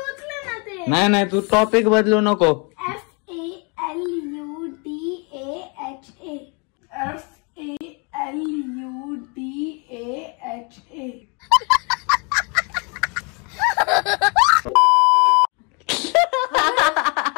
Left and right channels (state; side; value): quieter; right; 33.5 dB